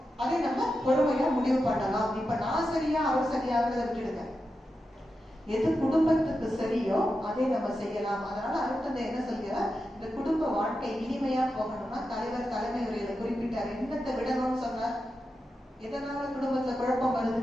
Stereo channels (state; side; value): normal; both; correlation 0.89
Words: அதை நம்ம பொறுமையா முடிவு பண்ணலாம். இப்ப நான் சரியா அவர் சரியாகிறத விட்டுடுங்க. எது குடும்பத்துக்கு சரியோ அதை நம்ம செய்யலாம். அதனால அடுத்தது என்ன சொல்கிறார், இந்த குடும்ப வாழ்க்கை இனிமையா போகணும்னா தலைவர் தலைமை உரையில குறிப்பிட்டார். என்னத்தை விடணும்னு சொன்னார்? எதனால குடும்பத்துல குழப்பம்